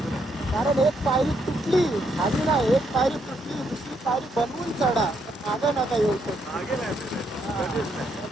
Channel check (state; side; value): normal; both; correlation 0.75